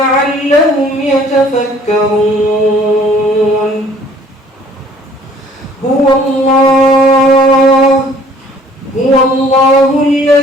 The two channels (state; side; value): normal; both; correlation 0.55